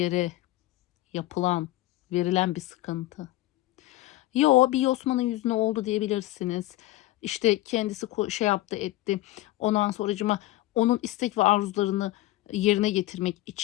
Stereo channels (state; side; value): quieter; right; 16.7 dB